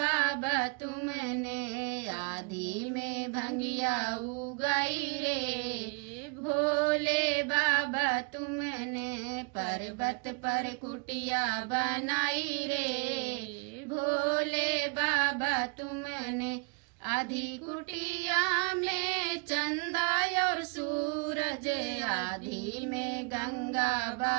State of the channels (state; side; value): quieter; left; 35.0 dB